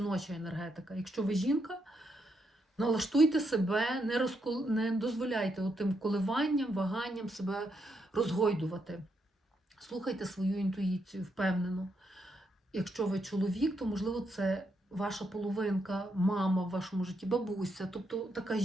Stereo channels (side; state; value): both; normal; correlation 0.80